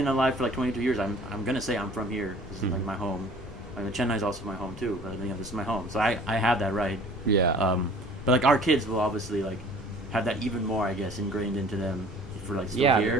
alive for like 22 years, I'm gonna say I'm from here. This is like my home. I mean, Chennai is also my home too, but this is my home, so I have that right. But like our kids will obviously like have that even more, I guess, ingrained into them if we're like still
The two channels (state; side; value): noise; left; rumble, 16 dB below the sound